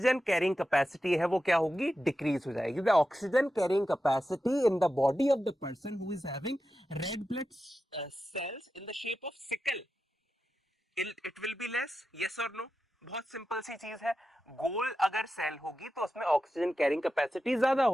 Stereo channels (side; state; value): both; normal; correlation 0.91